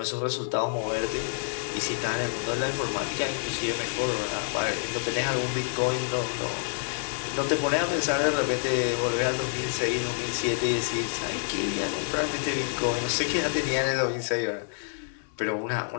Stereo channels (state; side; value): silent; right; 59 dB below the other